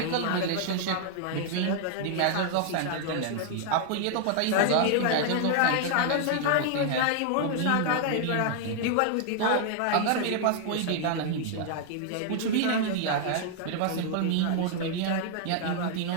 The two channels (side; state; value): both; different; correlation 0.00